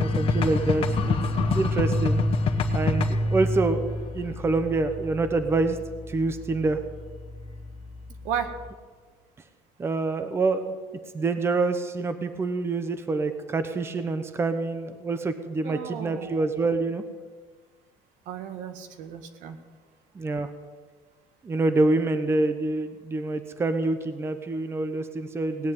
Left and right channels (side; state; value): both; normal; correlation 0.75